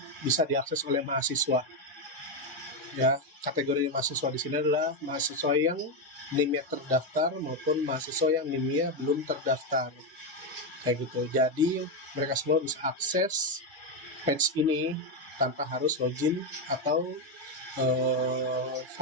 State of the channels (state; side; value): normal; both; correlation 0.07